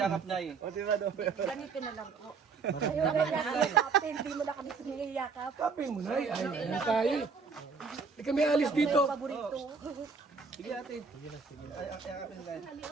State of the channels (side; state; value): left; quieter; 5.0 dB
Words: nay. Ganito na lang po. Hindi mo na kami siniyakap. Kapin mo, Nay. Ay tayo. Hindi kami alis dito. Sige ate. Ay, yakapin na.